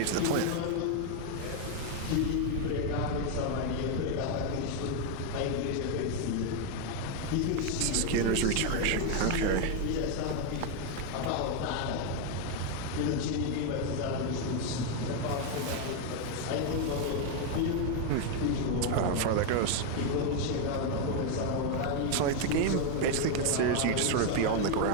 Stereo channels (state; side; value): different; both; correlation 0.01